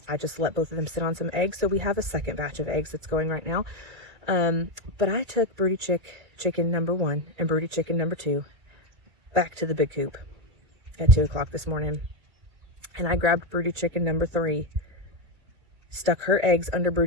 I just let both of them sit on some eggs. So we have a second batch of eggs that's going right now. But I took broody chicken number 1 and broody chicken number 2 back to the big coop at 2 o'clock this morning. And I grabbed broody chicken number 3, stuck her eggs under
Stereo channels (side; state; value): left; late; 2.3 ms